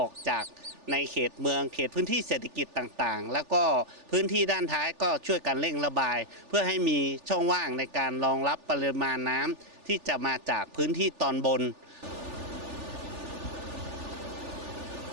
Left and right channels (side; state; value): left; late; 3.4 ms